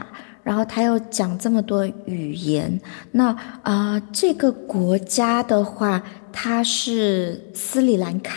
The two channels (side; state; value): right; silent; 65 dB below the other